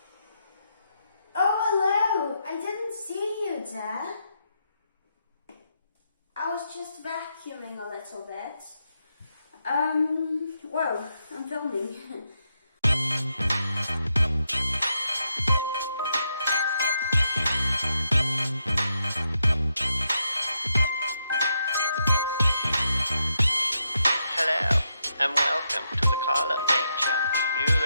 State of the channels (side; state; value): both; inverted; correlation -0.82